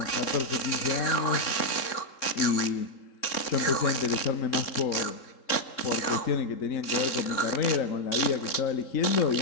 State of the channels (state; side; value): late; right; 3.6 ms